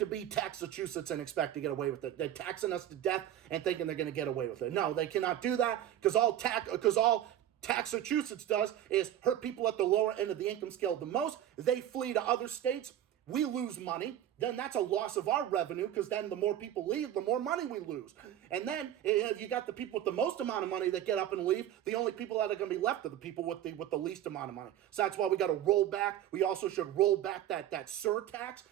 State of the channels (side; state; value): left; quieter; 11.4 dB